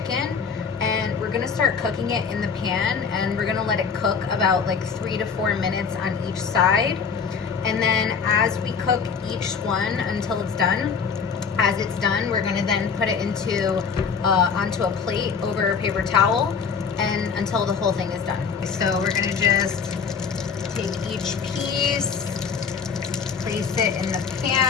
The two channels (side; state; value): right; quieter; 6.0 dB